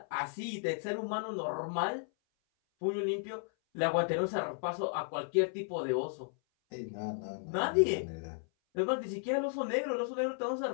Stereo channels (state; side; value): silent; right; 55 dB below the other